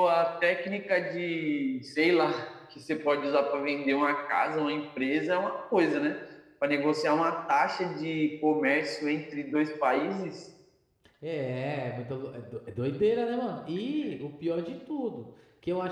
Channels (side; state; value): both; identical; correlation 1.00